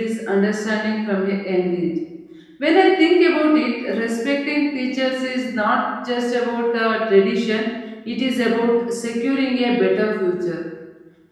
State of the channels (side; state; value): both; identical; correlation 1.00